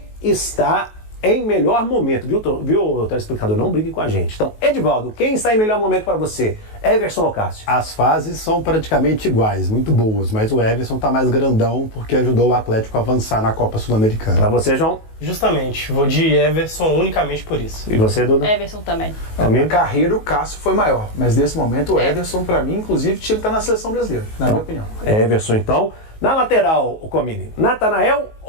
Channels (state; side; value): late; right; 19 ms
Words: está em melhor momento, viu, telespectador? Não brigue com a gente. Então, Edivaldo, quem está em melhor momento para você? Everson ou Cássio? As fases são praticamente iguais, muito boas, mas o Everson está mais grandão porque ajudou o Atlético a avançar na Copa Sul-Americana. Para você, João? Justamente, vou de Everson unicamente por isso. E você, Duda? Everson também. A carreira, o Cássio foi maior, mas nesse momento o Everson, para mim, inclusive, tinha que estar na seleção brasileira, na minha opinião. Everson, então. Na lateral, o Comini, Natanael